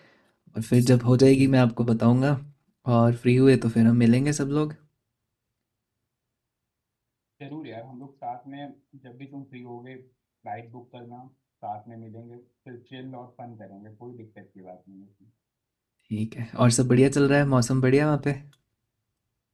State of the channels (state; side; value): identical; both; correlation 1.00